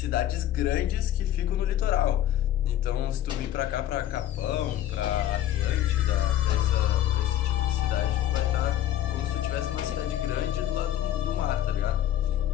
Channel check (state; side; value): quieter; right; 12.3 dB